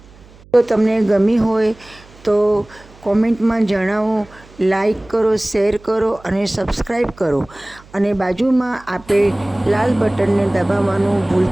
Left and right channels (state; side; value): noise; right; hum, 24 dB below the sound